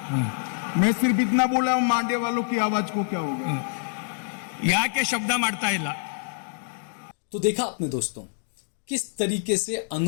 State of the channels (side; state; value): right; silent; digital silence